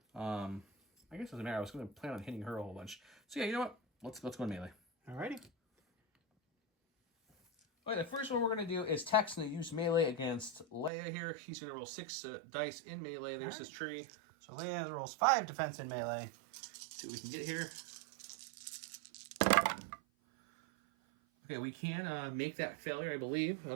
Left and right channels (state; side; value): drops out; left; at 10.9 s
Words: I guess it doesn't matter. I was going to plan on hitting her a whole bunch. So yeah, you know what? Let's go in melee. Alrighty. Okay, the first one we're going to do is Tech's going to use melee against Leia here. He's going to roll 6 dice in melee. There's his tree. So Leia rolls 5 defense in melee. See what we can get here. Okay, we can make that failure, I believe.